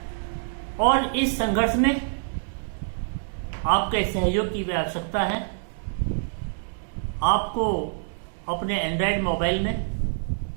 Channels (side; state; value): left; silent; digital silence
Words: और इस संघर्ष में आपके सहयोग की भी आवश्यकता है। आपको अपने एंड्रॉयड मोबाइल में